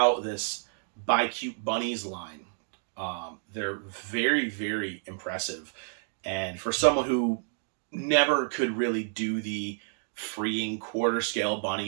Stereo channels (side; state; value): left; silent; digital silence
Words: this Buy Cute Bunnies line, they're very, very impressive. And for someone who never could really do the freeing quarter scale